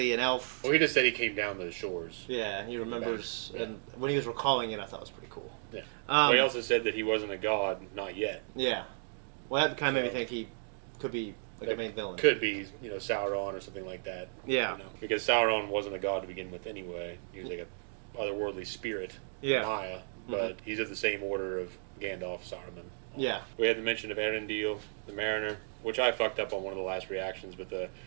an elf. Well, he just said he came down to the shores. Yeah, and he remembers, and when he was recalling it, I thought it was pretty cool. Yeah. Well, he also said that he wasn't a god, not yet. Yeah. Well, that kind of made me think he could be like a main villain. Could be, Sauron or something like that. Yeah. Because Sauron wasn't a god to begin with anyway. He was like a otherworldly spirit. Yeah. Maya. But he's of the same order of Gandalf, Saruman. Yeah. We had the mention of Eärendil, the Mariner, which I fucked up on one of the last reactions, but the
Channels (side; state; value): left; silent; digital silence